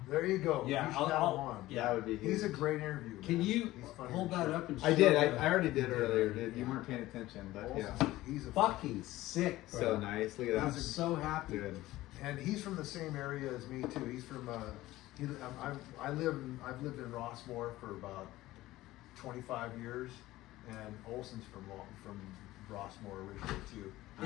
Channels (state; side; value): quieter; right; 16.8 dB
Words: There you go. yeah, You should have him on. yeah. That would be. He's a huge. great interview. Can man. you He's funny hold as that shit. up and I did. show I already did Yeah. earlier. Dude. You Yeah. weren't paying attention, but Olsen's, yeah. he's a Fucking sick, bro. So nice. Look at I'm that. so happy. Good. And he's from the same area as me too. He's from I've lived in Rossmore for about 25 years, and Olsen's from Rossmore originally too.